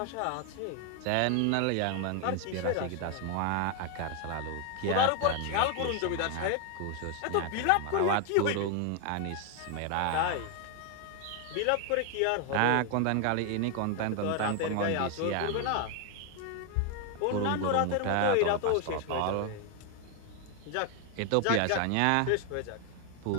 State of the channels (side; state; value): both; different; correlation 0.00